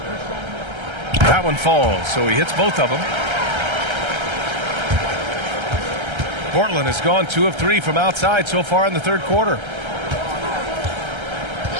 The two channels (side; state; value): left; late; 1.3 ms